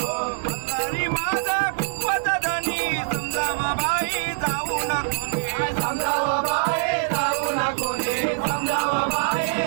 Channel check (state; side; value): silent; left; digital silence